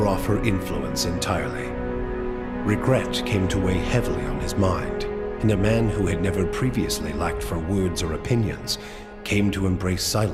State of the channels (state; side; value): identical; both; correlation 1.00